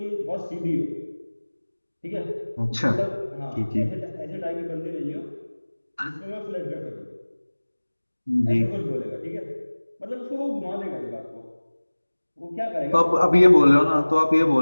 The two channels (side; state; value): both; inverted; correlation -1.00